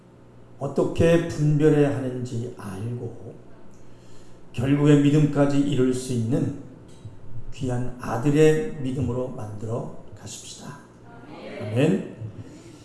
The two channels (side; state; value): both; identical; correlation 1.00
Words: 어떻게 분별해야 하는지 알고 결국에 믿음까지 이룰 수 있는 귀한 아들의 믿음으로 만들어 가십시다. 아멘.